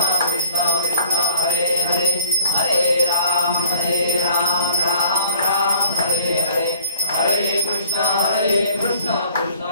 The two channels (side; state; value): both; inverted; correlation -0.54